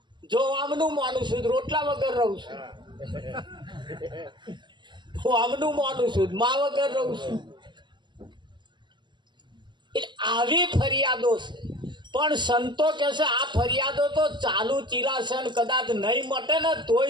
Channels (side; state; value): left; late; 0.22 ms